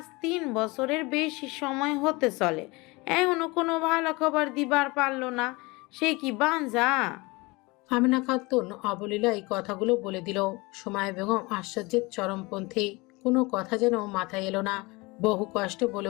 3 বছরের বেশি সময় হতে চলে, এখনো কোনো ভালো খবর দিবার পারলো না। সে কি বাঞ্জা? আমিনা খাতুন অবলীলায় কথাগুলো বলে দিল। সুমাইয়া বেগম আশ্চর্যের চরমপন্থী। কোনো কথা যেন মাথায় এলো না। বহু কষ্টে বলে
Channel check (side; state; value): right; quieter; 24.5 dB